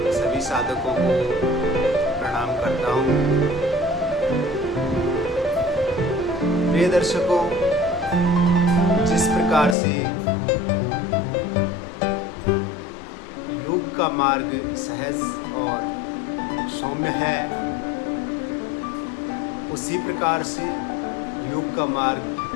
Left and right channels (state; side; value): drops out; right; at 9.8 s